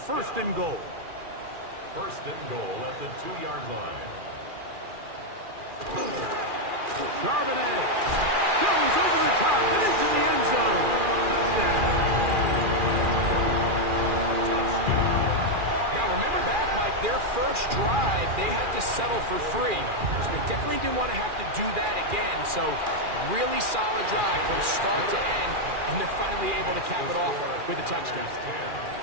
and goal. 1st and goal at the 2-yard line. Charbonnet goes over the top and into the end zone. Touchdown. Now remember back, Mike, their first drive, they had to settle for 3. So they definitely didn't want to have to do that again. So really solid drive from start to end, and they're finally able to cap it off with a touchdown.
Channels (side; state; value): left; late; 2.4 ms